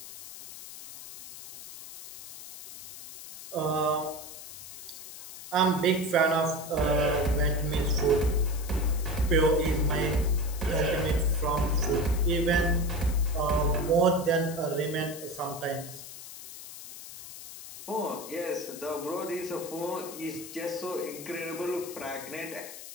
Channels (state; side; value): noise; left; hiss, 13 dB below the sound